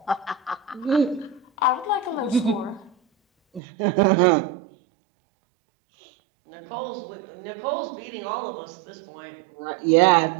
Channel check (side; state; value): left; drops out; at 3.6 s